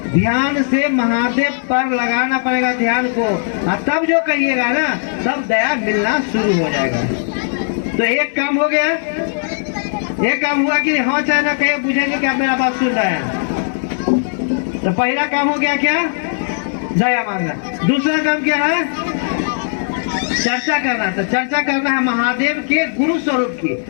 ध्यान से महादेव पर लगाना पड़ेगा ध्यान को। और तब जो कहिएगा ना तब दया मिलना शुरू हो जाएगा। तो एक काम हो गया। एक काम हुआ कि हाँ चाहे ना कहे बुझेंगे कि आप मेरा बात सुन रहे हैं। तो पहला काम हो गया क्या? दया मांगना। दूसरा काम क्या है? चर्चा करना। तो चर्चा करना है महादेव के गुरु स्वरूप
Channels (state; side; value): silent; right; 63 dB below the other